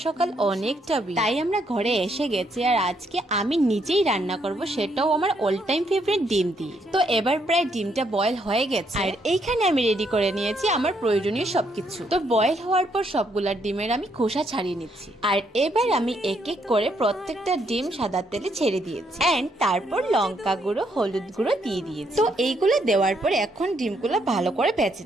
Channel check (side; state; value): both; normal; correlation 0.74